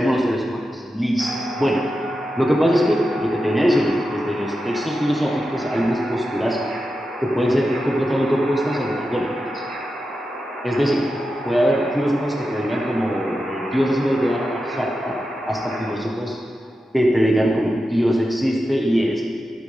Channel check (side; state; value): both; normal; correlation 0.90